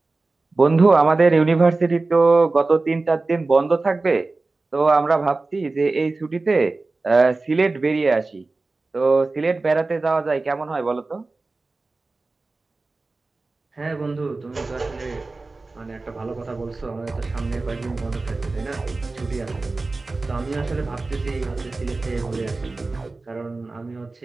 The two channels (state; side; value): quieter; left; 3.5 dB